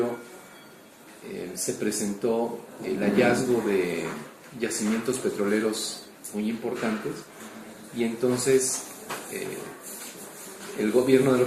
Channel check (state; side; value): identical; both; correlation 1.00